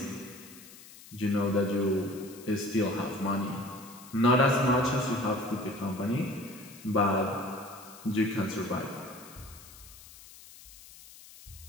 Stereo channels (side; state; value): left; noise; hiss, 19 dB below the sound